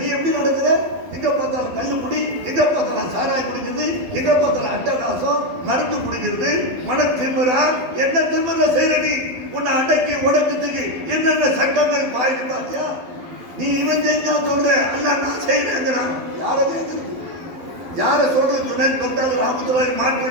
எப்படி நடக்குது, எங்க பார்த்தாலும் கல்லு குடி, எங்க பார்த்தாலும் சாராய் குடிக்கிறது, எங்க பார்த்தாலும் அட்டகாசம், மருந்து குடிக்கிறது, மன திமுறா, என்ன திமுற செய்யற நீ? உன்னை அடக்கி உடக்கத்துக்கு என்னென்ன சட்டங்கள் பாய்ந்து பார்த்தியா? நீ இவன் செஞ்சா சொல்ற, அல்ல நான் செய்யறேங்கிறான். யார கேட்கறது, யார சொல்றது? ஜுனைத் பக்தாது ராமத்துல்லாஹி மாட்டு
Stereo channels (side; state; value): left; late; 11 ms